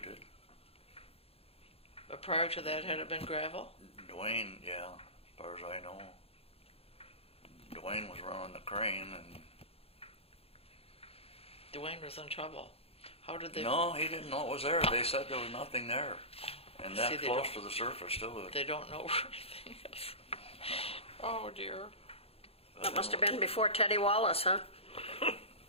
it. But prior to that, had it been gravel? Dwayne, yeah, as far as I know. Dwayne was running the crane, and Dwayne was in trouble. How did they... no, he didn't know it was there. They said there was nothing there, and See, that they close don't- to the surface too. They don't know where anything is. Oh, dear. That must have been before Teddy Wallace, huh?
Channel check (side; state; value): right; late; 0.28 ms